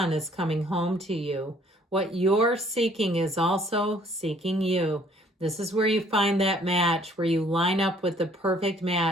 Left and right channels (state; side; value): normal; both; correlation 0.59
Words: is coming home to you. What you're seeking is also seeking you. This is where you find that match, where you line up with the perfect